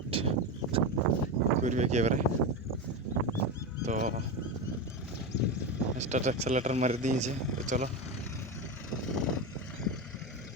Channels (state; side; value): normal; both; correlation 0.17